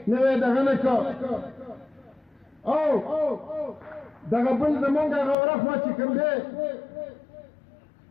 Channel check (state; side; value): drops out; right; at 5.4 s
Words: نوی دغه نه کړ او دغه بل زمونږ هغه ورخوا چې کوم دی